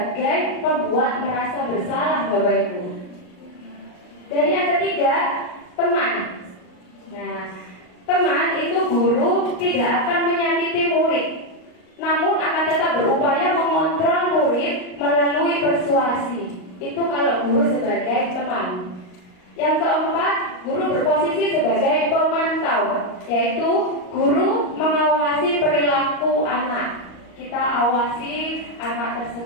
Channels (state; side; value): late; right; 38 ms